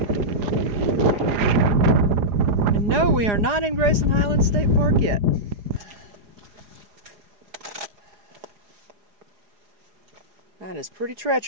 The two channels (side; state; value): left; late; 4.9 ms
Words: And no, we are not in Grayson Highlands State Park yet. That is pretty